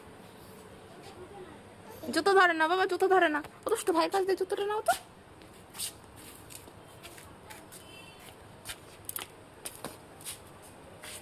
জুতো ধরে না বাবা, জুতো ধরে না। ও তো ভাই কাছ দিয়ে জুতোটা নাও তো।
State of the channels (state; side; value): identical; both; correlation 1.00